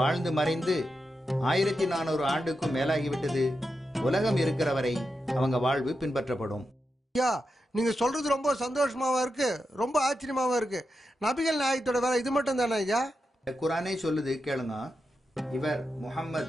மறைந்து 1400 ஆண்டுக்கும் மேலாகிவிட்டது. உலகம் இருக்கிற வரை அவங்க வாழ்வு பின்பற்றப்படும். ஐயா, நீங்க சொல்றது ரொம்ப சந்தோஷமாவா இருக்கு, ரொம்ப ஆச்சரியமாவா இருக்கு. நபிகள் நாயகத்தோட வேலை இது மட்டும் தானே ஐயா? குர்ஆனே சொல்லுது, கேளுங்க. இவர்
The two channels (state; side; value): normal; both; correlation 0.88